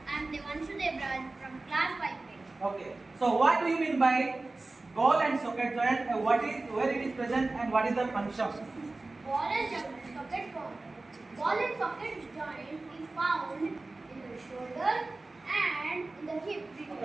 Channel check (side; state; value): left; quieter; 3.2 dB